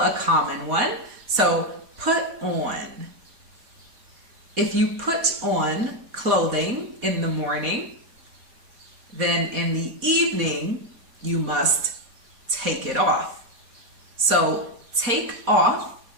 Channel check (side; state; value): left; late; 4.1 ms